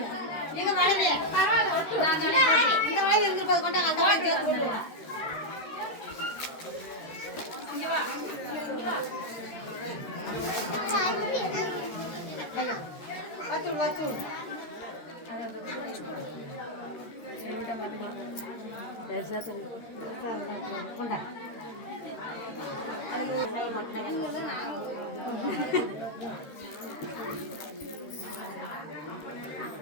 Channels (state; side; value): late; right; 13 ms